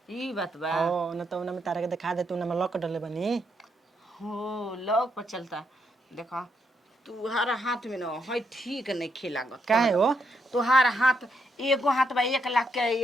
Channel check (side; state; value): both; normal; correlation 0.78